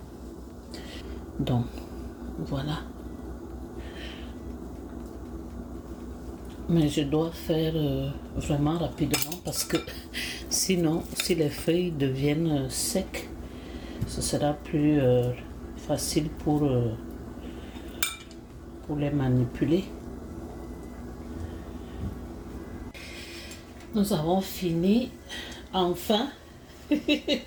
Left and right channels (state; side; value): identical; both; correlation 1.00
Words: Donc, voilà. Mais je dois faire vraiment rapidement parce que sinon, si les feuilles deviennent secs, ce sera plus facile pour les manipuler. Nous avons fini enfin